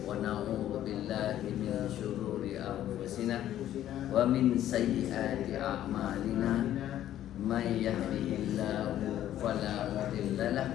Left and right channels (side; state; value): right; quieter; 12.2 dB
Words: ونعوذ بالله من شرور أنفسنا ومن سيئات أعمالنا من يهده الله فلا مضل له